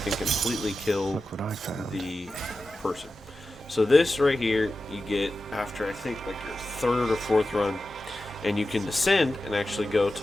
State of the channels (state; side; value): normal; both; correlation 0.93